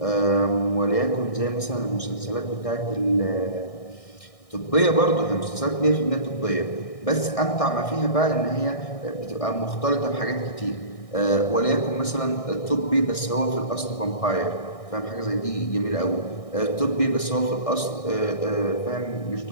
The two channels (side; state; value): right; late; 1.6 ms